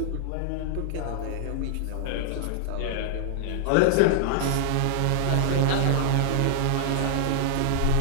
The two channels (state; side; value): different; both; correlation -0.01